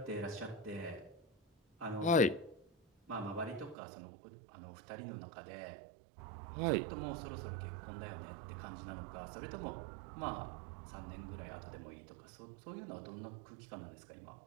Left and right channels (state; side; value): drops out; left; at 3.8 s